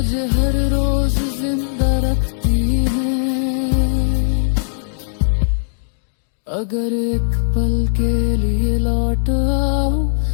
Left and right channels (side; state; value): right; silent; digital silence